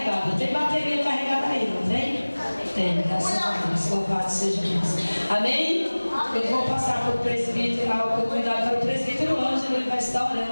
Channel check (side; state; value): both; inverted; correlation -1.00